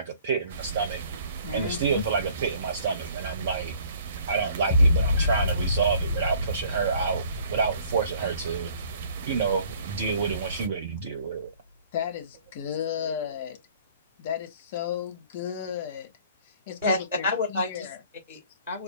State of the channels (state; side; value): inverted; both; correlation -0.55